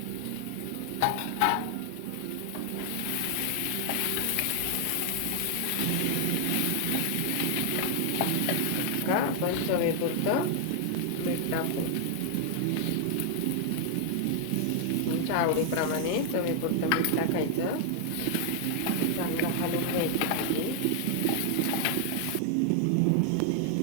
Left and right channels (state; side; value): different; both; correlation 0.00